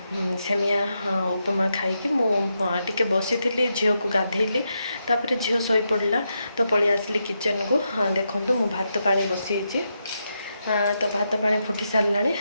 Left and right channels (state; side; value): inverted; both; correlation -0.84